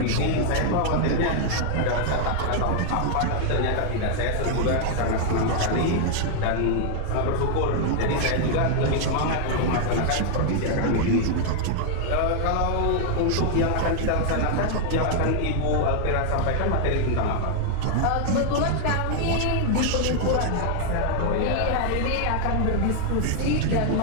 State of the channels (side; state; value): both; different; correlation 0.00